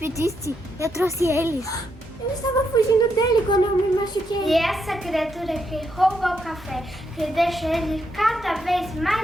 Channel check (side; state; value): both; normal; correlation 0.79